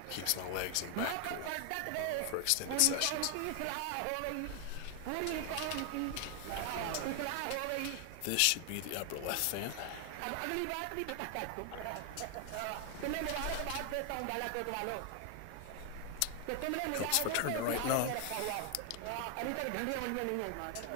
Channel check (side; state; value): both; different; correlation 0.00